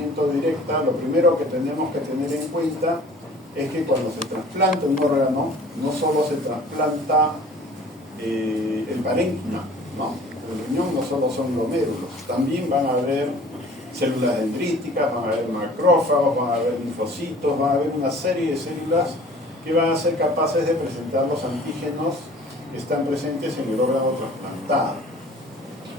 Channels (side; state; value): both; normal; correlation 0.48